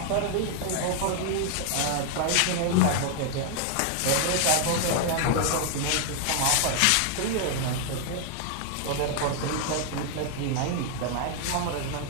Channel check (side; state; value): both; different; correlation 0.00